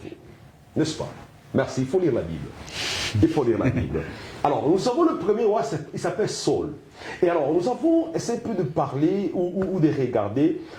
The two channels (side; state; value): both; identical; correlation 1.00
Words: vous. N'est-ce pas? Merci, il faut lire la Bible. Il faut lire la Bible. Alors, nous avons le premier roi, il s'appelle Saul. Et alors, nous avons essayé un peu de parler ou de regarder